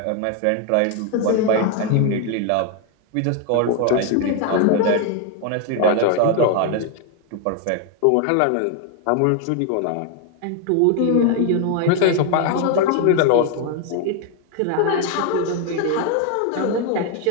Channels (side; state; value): both; different; correlation 0.01